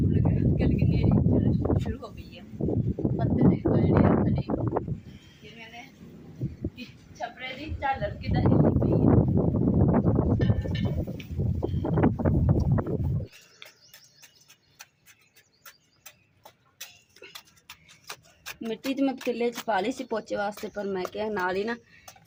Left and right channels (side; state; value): both; identical; correlation 1.00